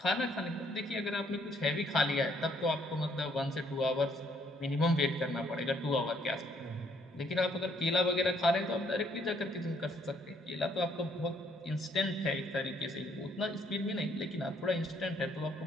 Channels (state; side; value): normal; both; correlation 0.67